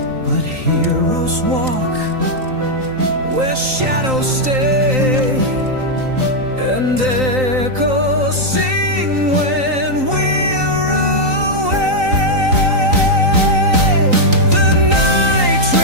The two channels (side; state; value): left; late; 3.9 ms